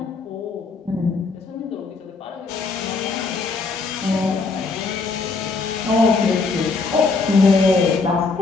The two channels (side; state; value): right; quieter; 4.2 dB